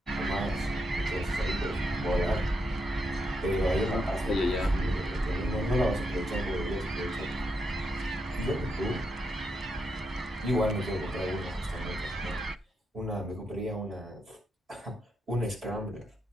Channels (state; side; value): normal; both; correlation 0.82